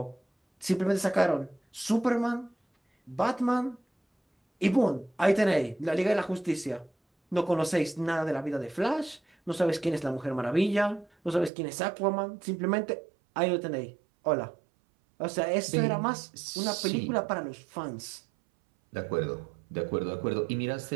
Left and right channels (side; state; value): left; drops out; at 11.5 s